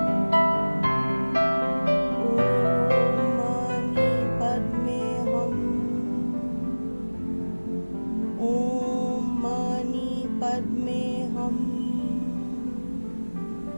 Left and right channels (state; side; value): inverted; both; correlation -1.00